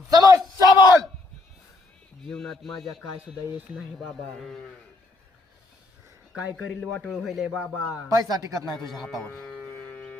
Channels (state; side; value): quieter; right; 3.1 dB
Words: समस्या बोल. जीवनात माझ्या काय सुद्धा येत नाही बाबा. काय करील वाटोळ होईल बाबा. पैसा टिकत नाही तुझ्या हातावर.